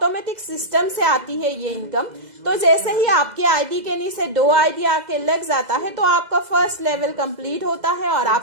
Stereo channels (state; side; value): late; left; 2.0 ms